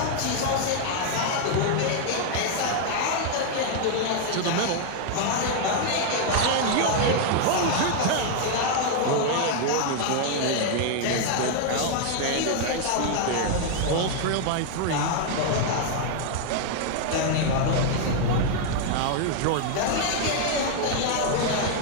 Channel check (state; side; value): different; both; correlation 0.00